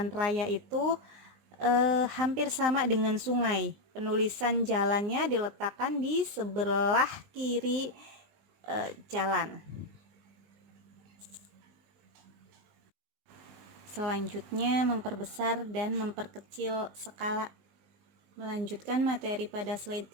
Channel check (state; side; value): late; left; 20 ms